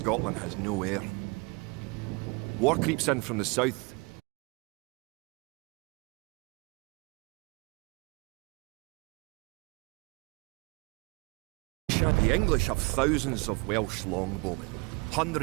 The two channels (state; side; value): quieter; left; 28.0 dB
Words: has no heir. War creeps in from the south. The English have thousands of Welsh longbowmen,